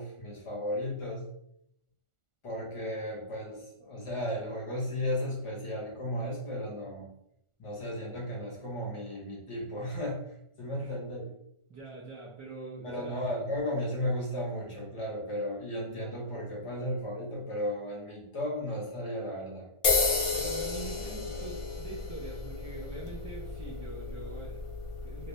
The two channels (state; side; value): late; right; 1.4 ms